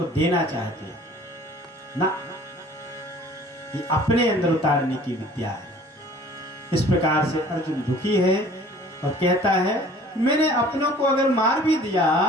देना चाहते हैं ना। ये अपने अंदर उतारने की विद्या है। इस प्रकार से अर्जुन दुखी है और कहता है, मैंने अपनों को अगर मार भी दिया,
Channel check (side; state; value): both; normal; correlation 0.50